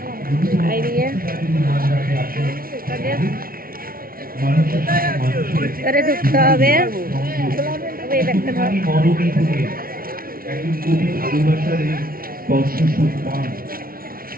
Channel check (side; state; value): left; late; 0.43 ms